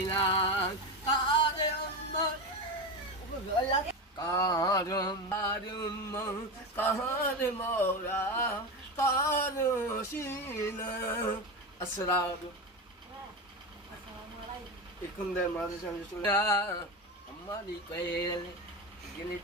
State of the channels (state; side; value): normal; both; correlation 0.19